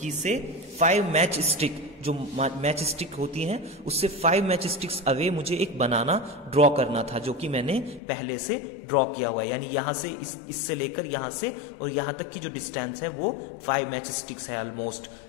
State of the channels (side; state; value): right; drops out; at 8.0 s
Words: से 5 मैच स्टिक, जो मैच स्टिक होती हैं उससे 5 मैच स्टिक्स अवे मुझे एक बनाना ड्रॉ करना था, जो कि मैंने पहले से ड्रॉ किया हुआ है। यानी यहां से इससे लेकर यहां से और यहां तक की जो डिस्टेंस है वो 5 मैच स्टिक्स है almost.